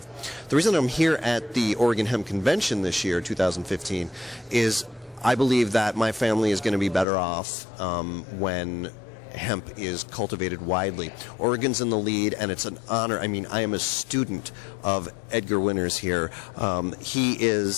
reason I'm here at the Oregon Hemp Convention this year, 2015, is I believe that my family is going to be better off when hemp is cultivated widely. Oregon's in the lead, and it's an honor. I mean, I am a student of Edgar Winters here. He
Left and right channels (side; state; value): right; drops out; at 7.1 s